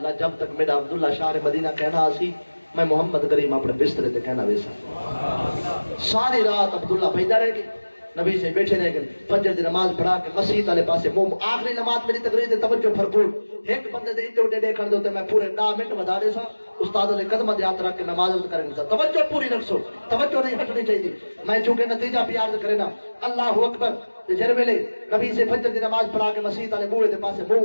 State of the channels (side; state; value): both; inverted; correlation -1.00